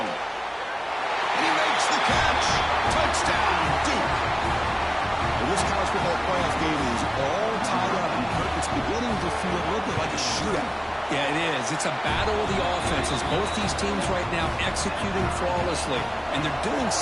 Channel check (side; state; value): both; identical; correlation 1.00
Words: And he makes the catch. Touchdown, Duke. Well, this college football playoff game is all tied up, and Kirk, it's beginning to feel a little bit like a shootout. Yeah, it is. It's a battle of the offenses. Both these teams right now executing flawlessly, and they're doing